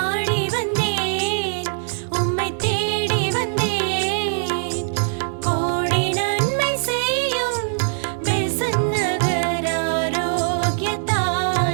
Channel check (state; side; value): silent; left; digital silence